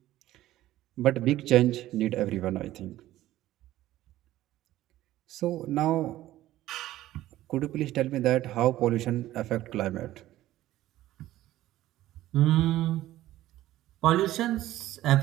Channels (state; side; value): quieter; left; 14.8 dB